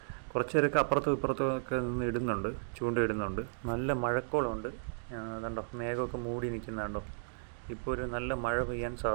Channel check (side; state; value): left; silent; digital silence